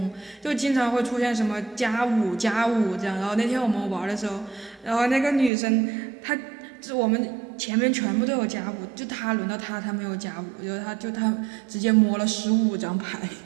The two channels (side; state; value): left; drops out; at 5.5 s